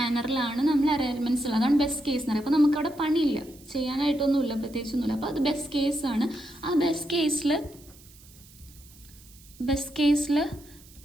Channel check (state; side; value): noise; right; hiss, 24 dB below the sound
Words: നമ്മൾ അറേ എലമെൻറ്റ്സ് ഉള്ളത്. അതാണ് ബെസ്റ്റ് കേസ് എന്ന് പറയുക. അപ്പോൾ നമുക്കവിടെ പണിയില്ല, ചെയ്യാനായിട്ടൊന്നുമില്ല, പ്രത്യേകിച്ചൊന്നുമില്ല. അപ്പോൾ അത് ബെസ്റ്റ് കേസാണ്. ആ ബെസ്റ്റ് കേസിൽ